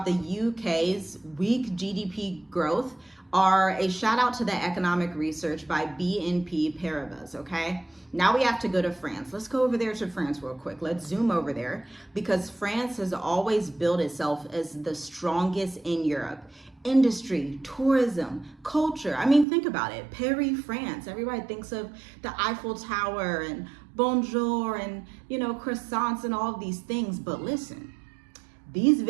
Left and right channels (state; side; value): drops out; left; at 19.5 s